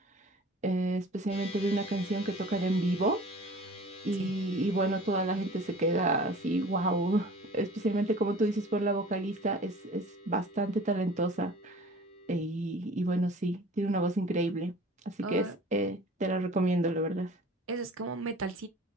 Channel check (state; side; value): normal; both; correlation 0.44